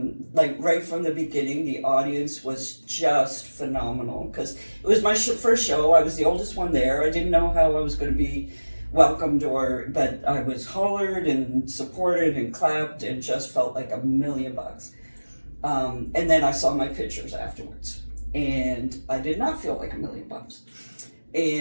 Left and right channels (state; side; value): inverted; both; correlation -1.00